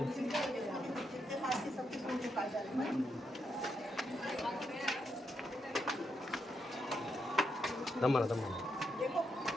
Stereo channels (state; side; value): normal; both; correlation 0.81